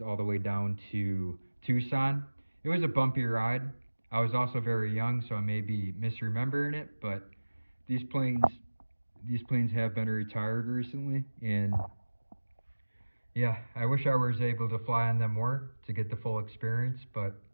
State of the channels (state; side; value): inverted; both; correlation -1.00